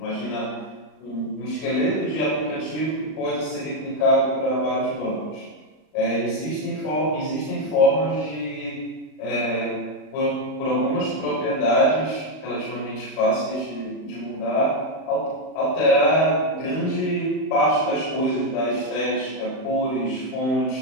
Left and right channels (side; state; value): right; late; 38 ms